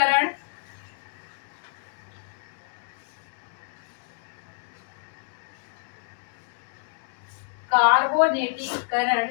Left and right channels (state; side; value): silent; right; digital silence